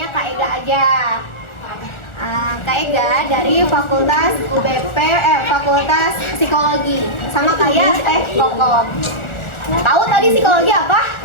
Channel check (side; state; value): right; late; 1.4 ms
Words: Kak Ega aja. Kak Ega dari Fakultas Fakultas Psikologi. Sama kayak Kokom. Tahu tadi psikologi apa?